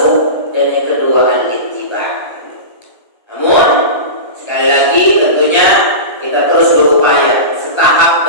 dan yang kedua al-ittiba. Namun sekali lagi tentunya kita terus berupaya setahap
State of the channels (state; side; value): late; right; 1.3 ms